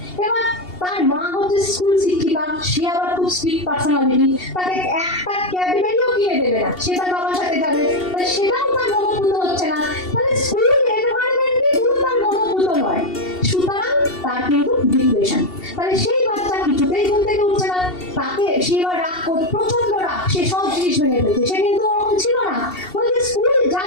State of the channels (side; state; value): right; late; 2.7 ms